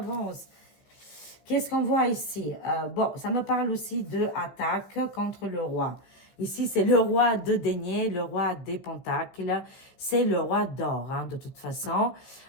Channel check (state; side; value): late; right; 15 ms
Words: Qu'est-ce qu'on voit ici? Bon, ça me parle aussi de attaque contre le roi. Ici, c'est le roi de denier, le roi des pentacles. C'est le roi d'or, hein, de toute façon.